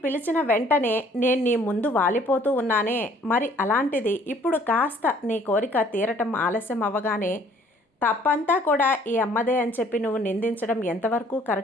పిలిచిన వెంటనే నేను నీ ముందు వాలిపోతూ ఉన్నానే. మరి అలాంటిది ఇప్పుడు కాస్త నీ కోరిక తీరటం ఆలస్యం అవ్వగానే తప్పంతా కూడా ఈ అమ్మదే అని చెప్పి నువ్వు నిందించడం ఎంతవరకు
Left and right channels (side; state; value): both; normal; correlation 0.58